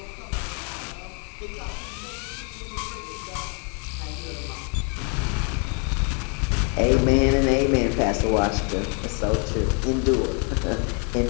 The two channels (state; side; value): quieter; right; 37.8 dB